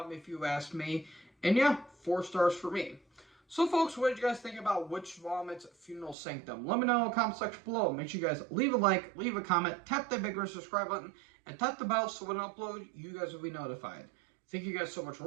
if you ask me. And yeah, 4 stars for me. So folks, what did you guys think about Witch Vomit's Funeral Sanctum? Let me know in the comment section below. Make sure you guys leave a like, leave a comment, tap that big red subscribe button, and tap the bell so when I upload, you guys will be notified. Thank you guys so much for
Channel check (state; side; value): drops out; left; at 6.2 s